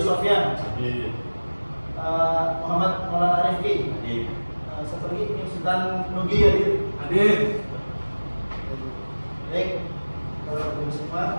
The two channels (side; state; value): both; inverted; correlation -1.00